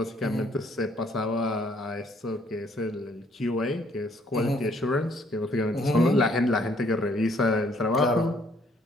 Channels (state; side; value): normal; both; correlation 0.65